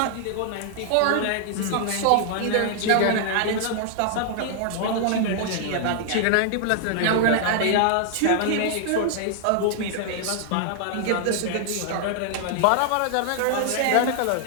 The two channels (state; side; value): different; both; correlation 0.00